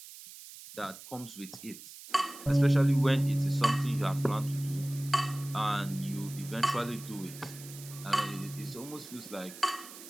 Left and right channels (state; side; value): noise; right; hiss, 15 dB below the sound